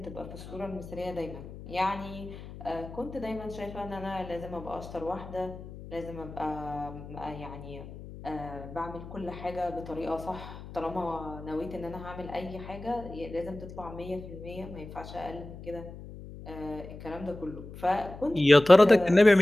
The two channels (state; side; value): noise; left; hum, 13 dB below the sound